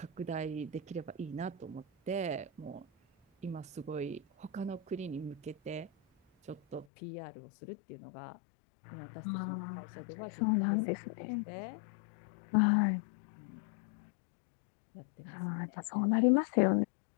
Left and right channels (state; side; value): drops out; right; at 6.9 s